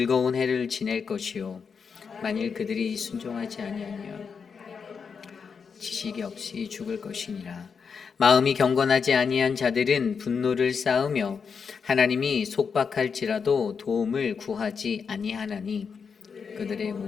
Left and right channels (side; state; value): right; quieter; 6.0 dB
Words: 해를 지낼 것이요 만일 그들이 순종하지 아니하면 지식이 없이 죽을 것이니라. 마음이 경건하지 아니한 자들은 분노를 쌓으며 하나님이 속박할지라도 도움을 구하지 아니하나니 그들의